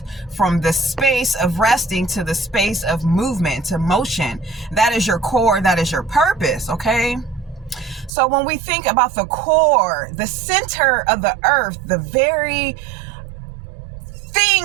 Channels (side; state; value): left; drops out; at 8.1 s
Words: from the space of resting to the space of movement, to motion. That is your core. That is your purpose, okay? So when we think about the core, the center of the earth, the very